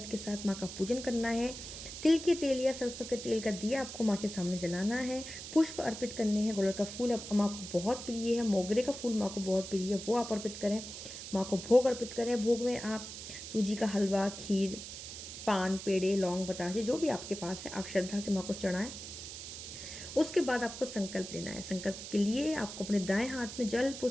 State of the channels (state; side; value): noise; right; hiss, 10 dB below the sound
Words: के साथ माँ का पूजन करना है। तिल के तेल या सरसों के तेल का दिया आपको माँ के सामने जलाना है। पुष्प अर्पित करने हैं। गुड़हल का फूल अब माँ को बहुत प्रिय है, मोगरे का फूल माँ को बहुत प्रिय है, वो आप अर्पित करें। माँ को भोग अर्पित करें। भोग में आप सूजी का हलवा, खीर, पान, पेड़े, लौंग, बताशे जो भी आपके पास है आप श्रद्धा से माँ को चढ़ाएं। उसके बाद आपको संकल्प लेना है। संकल्प के लिए आपको अपने दाएं हाथ में जल